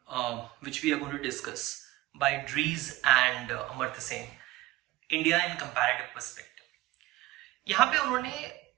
which we are going to discuss by Dries and Amartya Sen, India in Comparative Perspective. यहाँ पे उन्होंने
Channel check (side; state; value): left; quieter; 17.9 dB